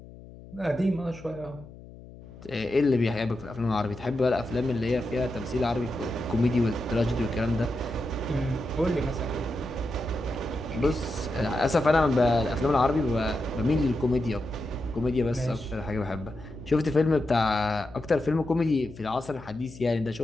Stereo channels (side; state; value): left; noise; hum, 18 dB below the sound